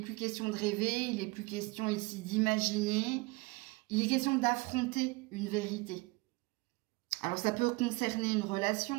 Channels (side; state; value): left; quieter; 24.5 dB